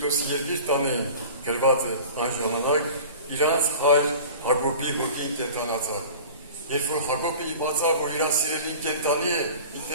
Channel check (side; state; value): both; inverted; correlation -0.40